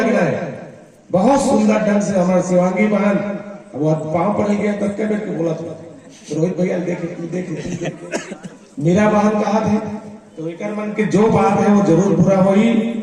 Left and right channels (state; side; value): identical; both; correlation 1.00